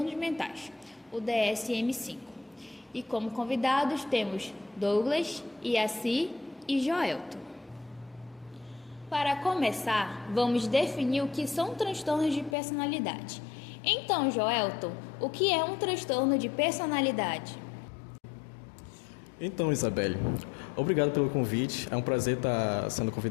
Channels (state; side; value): drops out; right; at 12.6 s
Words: Mentais, o DSM-5. E como convidados temos Douglas, Iaci e Joelton. Para começar, vamos definir o que são transtornos de personalidade. Então, Joelton, o que é um transtorno de personalidade? Então, Isabelle, obrigado pelo convite. É um prazer estar sendo